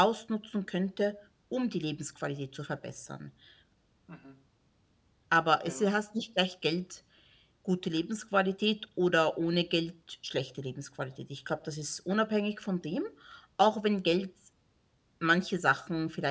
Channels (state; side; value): identical; both; correlation 1.00